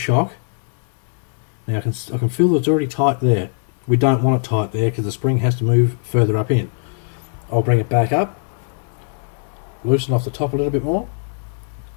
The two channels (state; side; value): silent; right; 66 dB below the other